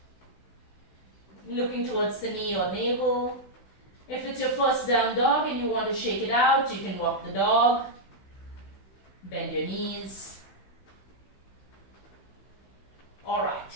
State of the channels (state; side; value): late; right; 15 ms